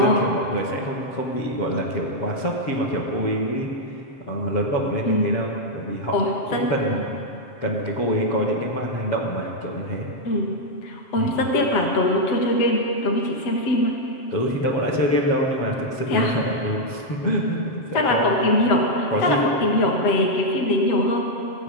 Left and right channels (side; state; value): right; late; 7.5 ms